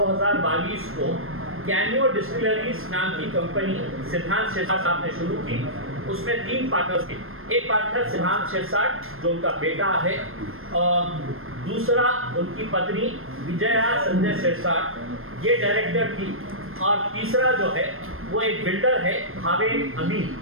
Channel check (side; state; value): left; late; 0.61 ms